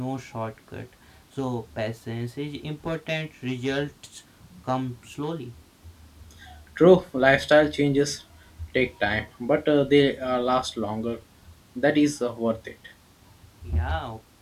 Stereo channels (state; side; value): identical; both; correlation 1.00